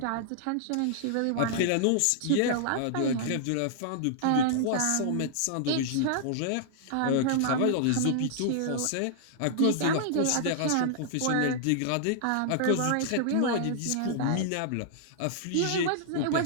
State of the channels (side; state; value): both; different; correlation -0.01